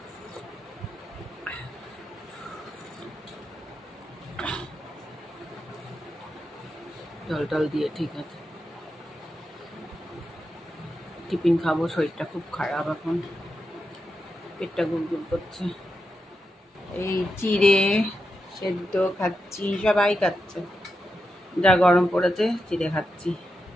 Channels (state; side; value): normal; both; correlation 0.87